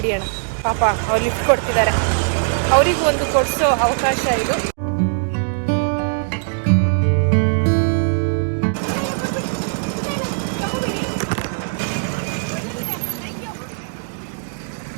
ಪಾಪ ಅವ್ರು ಲಿಫ್ಟ್ ಕೊಡ್ತಿದ್ದಾರೆ, ಅವರಿಗೂ ಒಂದು ಕೊಡಿಸೋ ಅವಕಾಶ ಇದು.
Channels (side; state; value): left; silent; digital silence